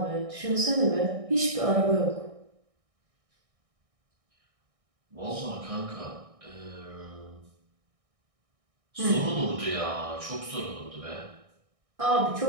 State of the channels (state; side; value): late; left; 1.6 ms